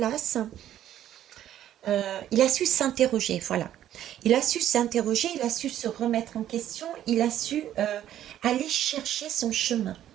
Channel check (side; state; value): left; quieter; 11.6 dB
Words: il a su s'interroger, voilà. Il a su s'interroger, il a su se remettre en question, il a su aller chercher son chemin.